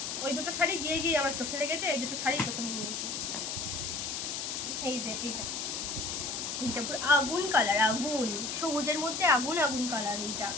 ওই দুটো শাড়ি গিয়ে আমার চোখে লেগেছে। এই দুটো শাড়ি প্রথমে নিয়েছি। এই যে এইটা পুরো আগুন কালার, আগুন সবুজের মধ্যে আগুন কালার। এটা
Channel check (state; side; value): noise; left; hiss, 3 dB below the sound